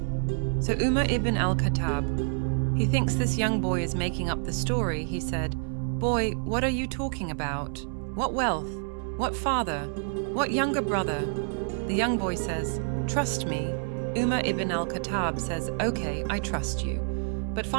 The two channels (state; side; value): silent; left; 59 dB below the other